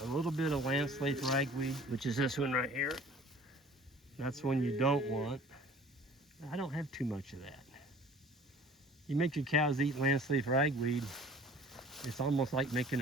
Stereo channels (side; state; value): both; normal; correlation 0.49